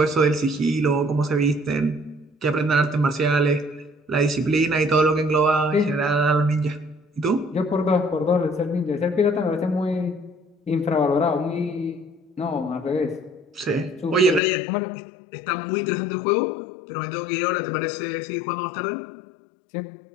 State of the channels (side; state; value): right; drops out; at 14.4 s